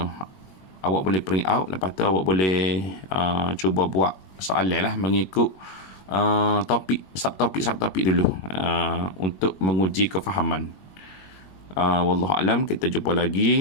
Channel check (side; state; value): right; late; 21 ms